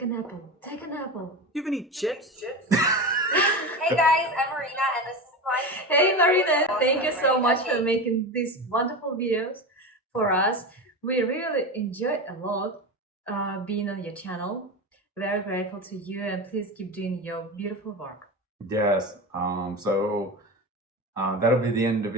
an apple. Take an apple. You have any chips? Hey guys, I'm Marina and this is my Hey Marina, thank you so Right, much okay. for making these wonderful videos for us. We really enjoyed a lot being on your channel. Very grateful to you, and please keep doing your beautiful work. Yes. That'll be the end of the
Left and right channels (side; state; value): both; normal; correlation 0.24